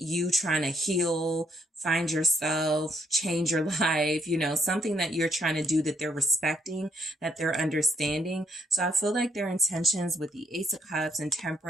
trying to heal, find yourself, change your life, you know, something that you're trying to do that they're respecting, that they're understanding. So I feel like their intentions with the Ace of Cups and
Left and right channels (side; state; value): both; normal; correlation 0.72